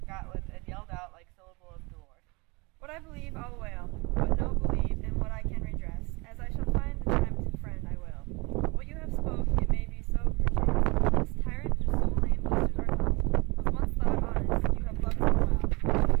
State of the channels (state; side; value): quieter; left; 26.8 dB